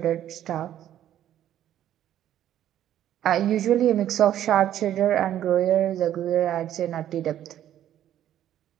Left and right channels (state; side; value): quieter; left; 11.5 dB